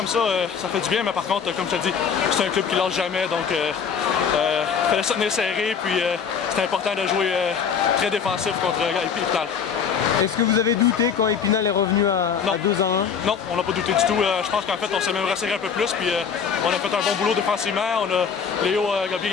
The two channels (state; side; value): quieter; right; 6.8 dB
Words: ça, ça fait du bien, mais par contre, comme je te dis, c'est un club qui lâche jamais, donc il fallait se tenir serré, puis c'est important de jouer très défensif contre Épinal. Est-ce que vous avez douté quand Épinal est revenu à 2-1? Non, on n'a pas douté du tout. Je pense qu'en fait, on s'est même resserré un peu plus, puis on a fait un bon boulot défensivement. Léo a bien